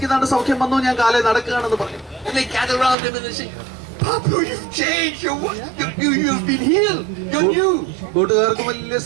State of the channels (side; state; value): left; drops out; at 3.0 s